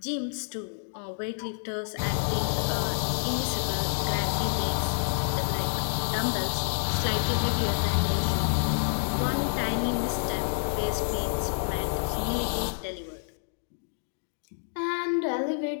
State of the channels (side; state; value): right; silent; digital silence